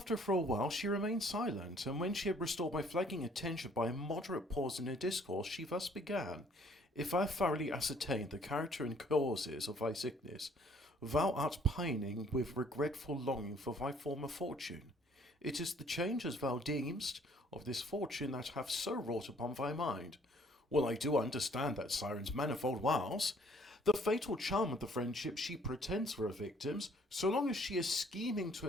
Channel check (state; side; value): normal; both; correlation 0.60